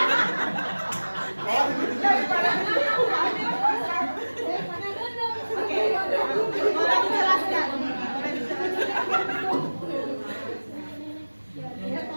Boleh dijelaskan? Ya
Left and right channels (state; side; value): inverted; both; correlation -1.00